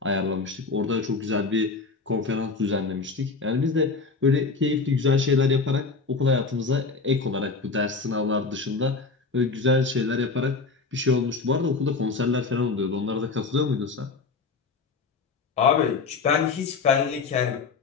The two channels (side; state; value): right; quieter; 4.4 dB